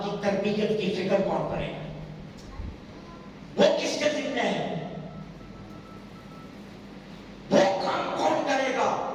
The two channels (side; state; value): both; identical; correlation 1.00